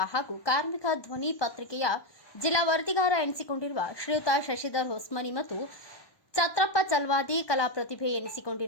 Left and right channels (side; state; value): right; late; 1.2 ms